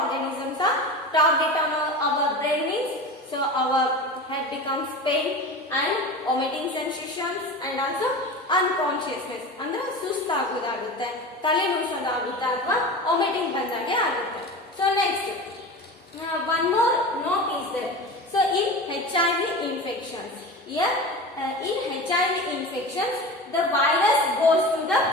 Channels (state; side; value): normal; both; correlation 0.31